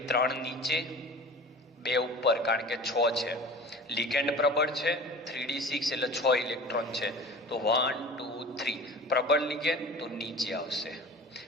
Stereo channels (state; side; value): normal; both; correlation 0.39